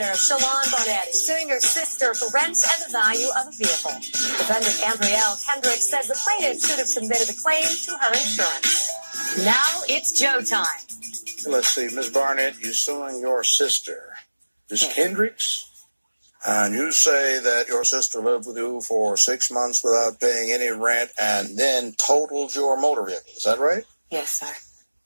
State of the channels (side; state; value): both; inverted; correlation -1.00